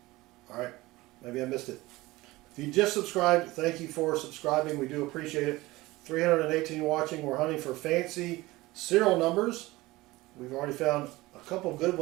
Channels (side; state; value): left; quieter; 19.7 dB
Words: All right, maybe I missed it. If you just subscribed, thank you for subscribing. We do appreciate it. 318 watching. We're hunting for fancy serial numbers. We've already found a couple good